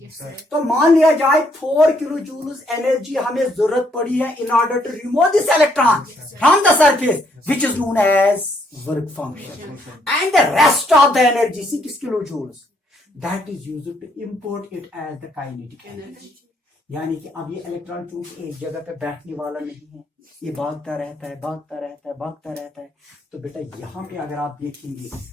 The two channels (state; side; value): normal; both; correlation 0.71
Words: तो मान लिया जाए 4 किलो जूल्स एनर्जी हमें जरूरत पड़ी है in order to remove this electron from the surface which is known as work function, and the rest of the energy 6 kilo joules that is used to import it as the kinetic energy. यानी कि अब ये electron चूंकि एक जगह पे बैठने वाला नहीं है, ये भागता रहता है, भागता रहता है, भागता रहता है। तो बेटा यहाँ पे अगर आप देखेंगे